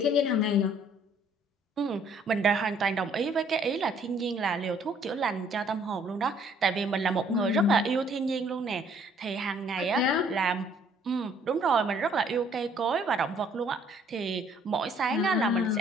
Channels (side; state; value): both; normal; correlation 0.62